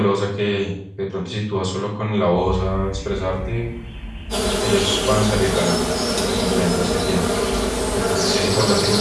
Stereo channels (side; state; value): both; identical; correlation 1.00